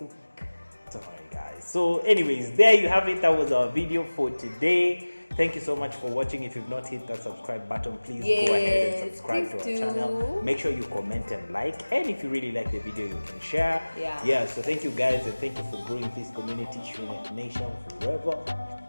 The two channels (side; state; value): both; inverted; correlation -1.00